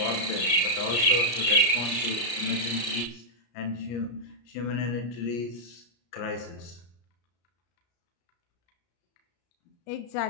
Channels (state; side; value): late; right; 34 ms